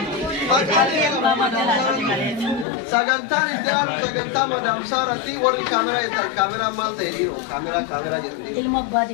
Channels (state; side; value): drops out; right; at 2.7 s